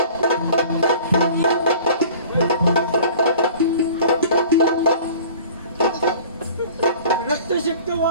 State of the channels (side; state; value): both; inverted; correlation -0.45